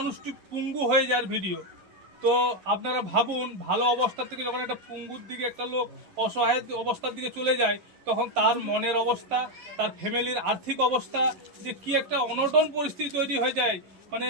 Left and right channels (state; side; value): late; left; 11 ms